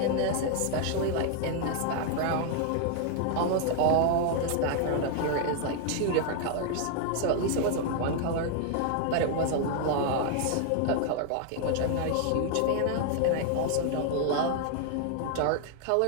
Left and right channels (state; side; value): different; both; correlation 0.00